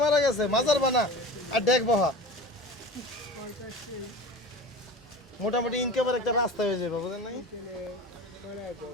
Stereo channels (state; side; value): normal; both; correlation 0.35